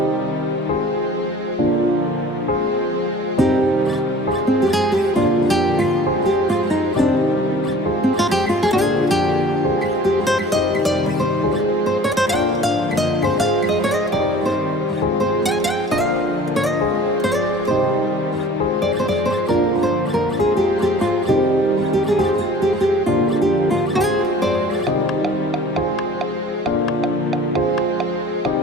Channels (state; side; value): normal; both; correlation 0.47